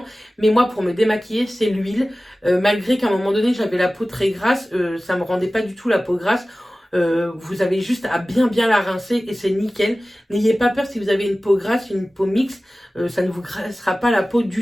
Mais moi, pour me démaquiller, c'est l'huile. Malgré qu'à un moment donné, j'avais la peau très grasse, ça me rendait pas du tout la peau grasse. Vous avez juste à bien la rincer et c'est nickel. N'ayez pas peur si vous avez une peau grasse, une peau mixte, ça ne vous graissera pas la peau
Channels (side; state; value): both; normal; correlation 0.97